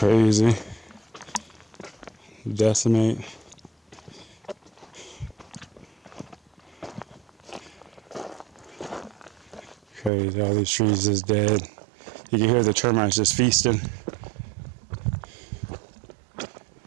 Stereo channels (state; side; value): drops out; left; at 10.1 s